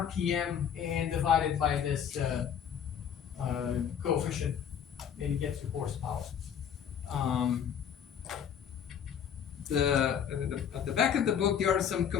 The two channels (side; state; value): right; quieter; 8.4 dB